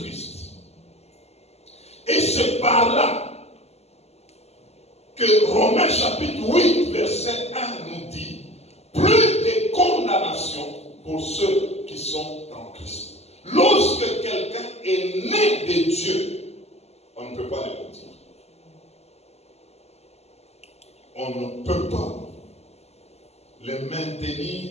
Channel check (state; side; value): late; right; 0.30 ms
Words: Et c'est par là que Romains chapitre 8, verset 1 nous dit, plus de condamnation pour ceux qui sont en Christ. Lorsque quelqu'un est né de Dieu, on ne peut pas le mentir. On ne peut pas le